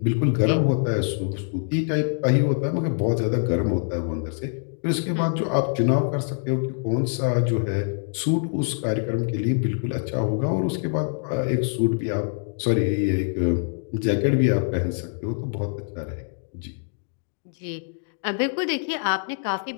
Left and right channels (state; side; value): silent; right; digital silence